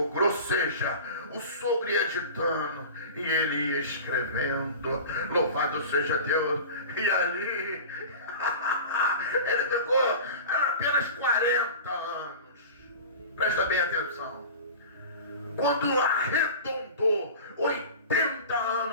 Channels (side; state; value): both; inverted; correlation -0.35